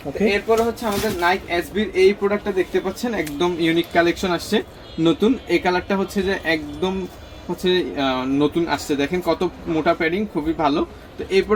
এরপরে হচ্ছে আমাদের নাইক এসবির এই প্রোডাক্টটা দেখতে পাচ্ছেন, একদম ইউনিক কালেকশন আসছে নতুন। এই কালারটা হচ্ছে যে একদম হচ্ছে নতুন আসছে, দেখেন কত মোটা প্যাডিং, খুবই ভালো। তো এই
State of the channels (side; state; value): both; identical; correlation 1.00